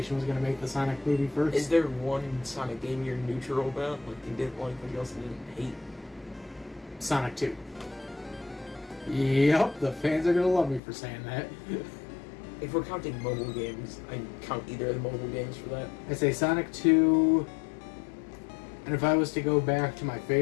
was going to make the Sonic movie first? Is there one Sonic game you're neutral about? Like you didn't like, but you also didn't hate? Sonic 2. Yep, the fans are going to love me for saying that. If we're counting mobile games, I count either of the mobile games for that. I say Sonic 2, and if I was to go back to my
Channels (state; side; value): drops out; right; at 10.8 s